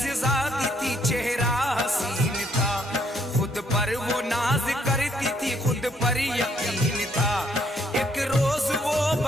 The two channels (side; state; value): both; normal; correlation 0.70